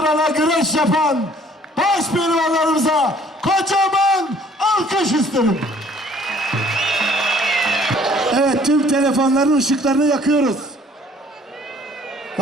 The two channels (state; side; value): normal; both; correlation 0.57